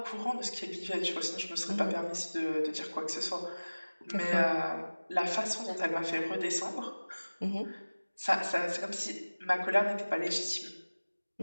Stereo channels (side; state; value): both; inverted; correlation -1.00